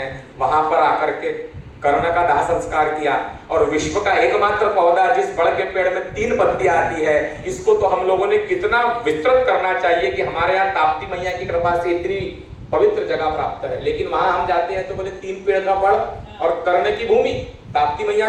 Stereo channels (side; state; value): both; identical; correlation 1.00